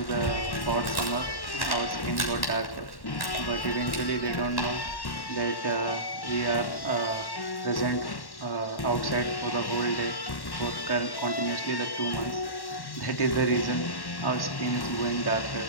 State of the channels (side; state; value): right; late; 1.1 ms